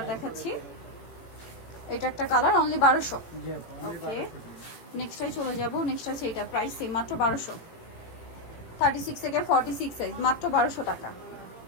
দেখাচ্ছি, এটা একটা কালার, অনলি 1200। জি আপু, ওকে, নেক্সটে চলে যাব। নেক্সট আছে এটা, প্রাইস সেম, মাত্র 1200। 36 থেকে 46 সাইজ, মাত্র 1200 টাকা।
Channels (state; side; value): late; right; 18 ms